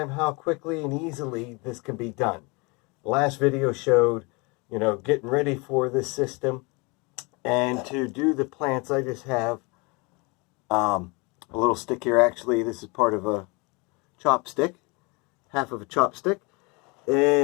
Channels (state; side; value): quieter; right; 28.5 dB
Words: how quickly and easily this can be done. The last video showed, getting ready for this system. And to do the plants, I just have a little stick here. Actually, this is part of a chopstick, half of a chopstick.